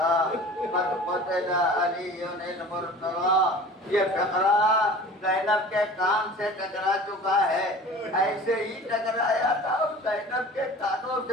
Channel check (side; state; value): both; normal; correlation 0.42